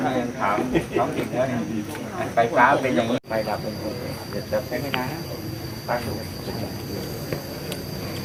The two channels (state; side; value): identical; both; correlation 1.00